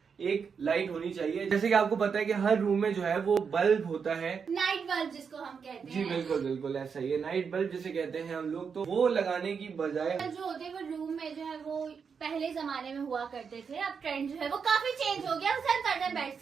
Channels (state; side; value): quieter; left; 6.2 dB